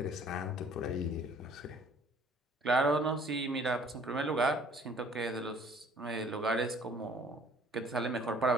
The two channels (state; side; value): normal; both; correlation 0.56